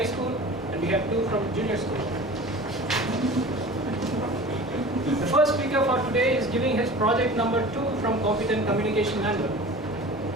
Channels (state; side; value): normal; both; correlation 0.39